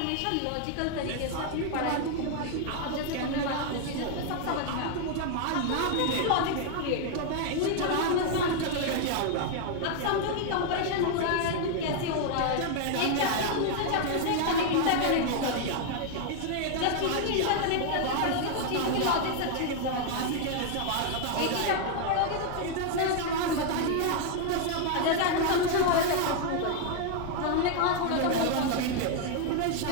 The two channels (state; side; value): different; both; correlation 0.00